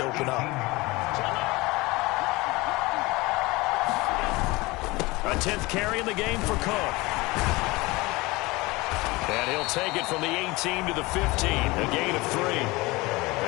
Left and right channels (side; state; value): right; quieter; 22.5 dB